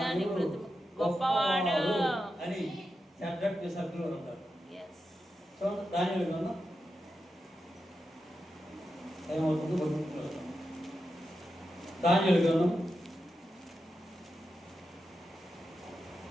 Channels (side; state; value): both; normal; correlation 0.89